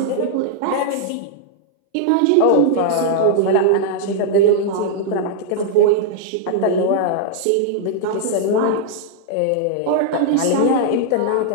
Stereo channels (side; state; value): both; different; correlation -0.01